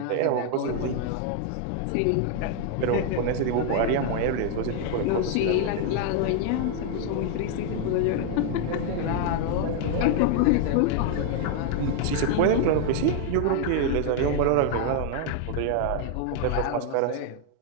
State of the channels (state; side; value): different; both; correlation 0.00